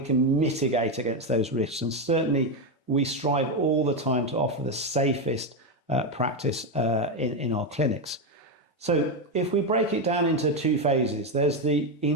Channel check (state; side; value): normal; both; correlation 0.09